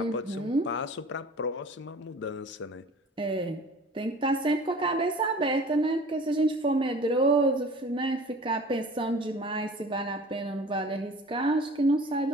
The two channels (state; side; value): normal; both; correlation 0.44